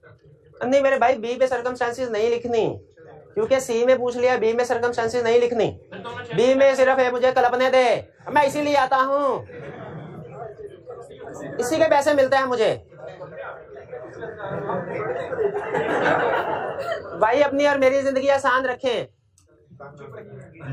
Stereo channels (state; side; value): identical; both; correlation 1.00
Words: नहीं मेरे भाई, बी पे सर्कमस्टेंसेस नहीं लिखनी, क्योंकि सी में पूछ लिया, बी में सर्कमस्टेंसेस नहीं लिखनी। बी में सिर्फ है मुझे कल्पने दे, मैं इसीलिए आता हूं, इसी के पैसे मिलते हैं मुझे। भाई अपनी और मेरी जिंदगी आसान रखें।